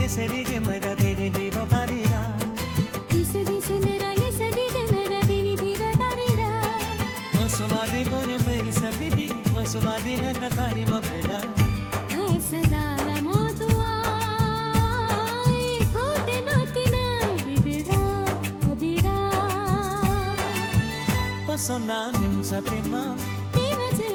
뭐라 되니 비로 가리라 Dice 내라 예세리게 뭐라 되니 비로 가리라 벗어나는 거는 매일 사비디 벗어나는 한가까리 먹으라 ऐसे दारा मोतुआ होते नोतिना बिबिरा बिबिरा 벗어나는 사태만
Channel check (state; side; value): identical; both; correlation 1.00